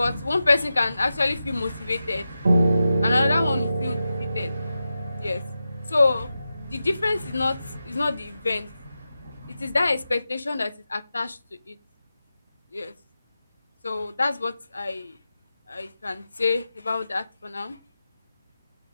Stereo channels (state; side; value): inverted; both; correlation -0.91